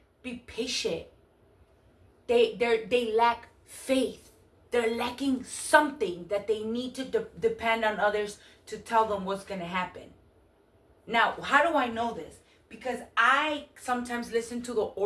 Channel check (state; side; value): identical; both; correlation 1.00